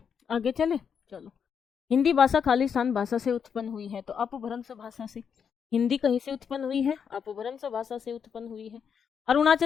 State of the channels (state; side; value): quieter; right; 7.1 dB